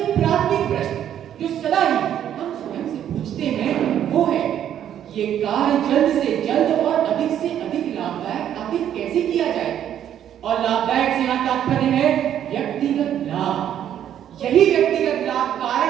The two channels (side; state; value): left; quieter; 10.3 dB